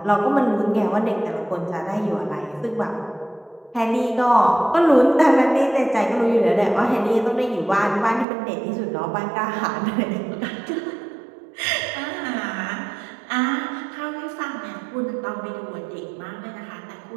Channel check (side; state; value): left; drops out; at 8.2 s